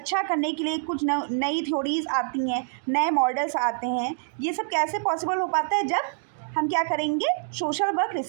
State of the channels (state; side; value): silent; left; digital silence